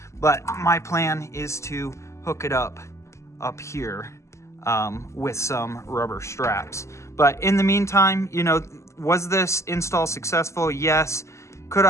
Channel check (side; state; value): right; late; 0.14 ms